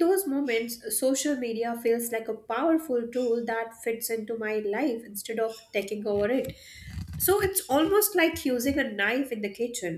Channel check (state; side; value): identical; both; correlation 1.00